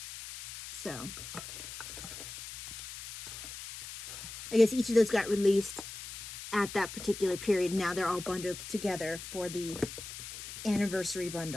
So, I guess each of those got released at that particular period. Now they're all bundled together for the anniversary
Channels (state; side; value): noise; left; hiss, 10 dB below the sound